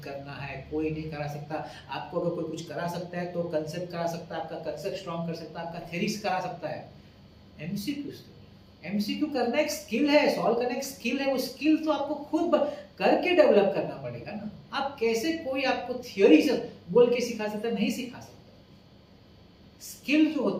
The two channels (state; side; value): identical; both; correlation 1.00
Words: करना है, कोई नहीं करा सकता। आपको अगर कोई कुछ करा सकता है तो कंसेप्ट करा सकता है, आपका कंसेप्ट स्ट्रॉन्ग कर सकता है, आपका थ्योरीज करा सकता है। एमसीक्यू करना एक स्किल है, सॉल्व करना एक स्किल है, वो स्किल तो आपको खुद करके डेवलप करना पड़ेगा ना। आप कैसे कोई आपको थ्योरी से बोल के सिखा सकता है, नहीं सिखा सकता। स्किल जो